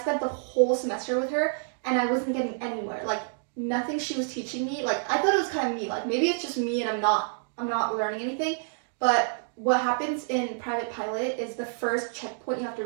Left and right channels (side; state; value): left; silent; digital silence